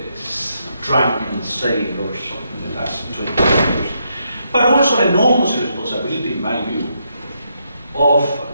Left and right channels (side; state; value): both; inverted; correlation -0.78